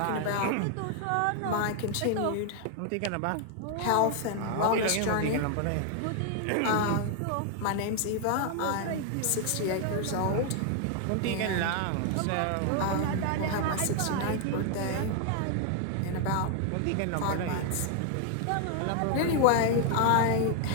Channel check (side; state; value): both; different; correlation 0.00